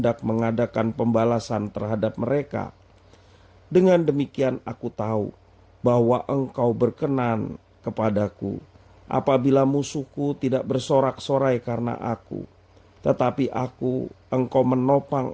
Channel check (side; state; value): both; identical; correlation 1.00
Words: mengadakan pembalasan terhadap mereka. Dengan demikian aku tahu bahwa engkau berkenan kepadaku, apabila musuhku tidak bersorak-sorai karena aku. Tetapi engkau menopang